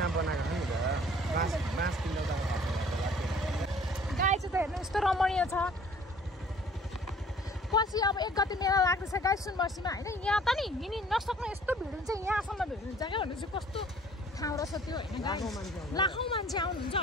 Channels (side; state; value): both; normal; correlation 0.53